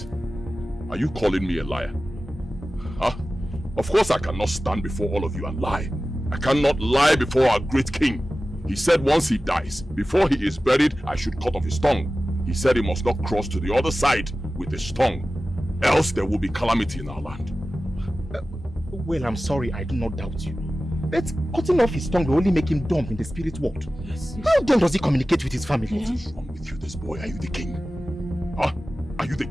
are you calling me a liar? Huh? Of course I cannot stand before all of you and lie. I cannot lie before our great king. He said once he dies, before he is buried, I should cut off his tongue. He said he must not cross to the other side with his tongue, else there will be calamity in our land. Well, I'm sorry, I do not doubt you. But cutting off his tongue will only make him dumb in the spirit world. Yes. How then does he communicate with his family? What is wrong with you, this boy? Are you the king? Huh? Are you the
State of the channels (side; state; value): both; normal; correlation 0.95